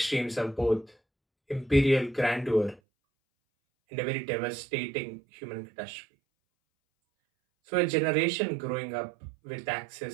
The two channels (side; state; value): left; drops out; at 2.8 s